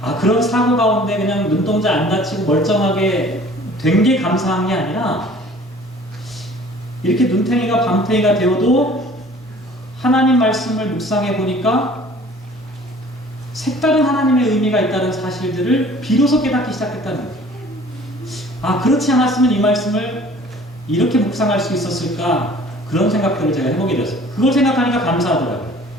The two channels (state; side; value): normal; both; correlation 0.50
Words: 그런 사고 가운데 그냥 눈동자 안 다치고 멀쩡하게 된 게 감사한 게 아니라 이렇게 눈탱이가 밤탱이가 되어도 하나님 말씀을 묵상해 보니까 색다른 하나님의 의미가 있다는 사실들을 비로소 깨닫기 시작했다는 거예요. 그렇지 않았으면 이 말씀을 이렇게 묵상할 수 있었을까 그런 생각들을 제가 해보게 되었어요. 그걸 생각하니까 감사하더라고요.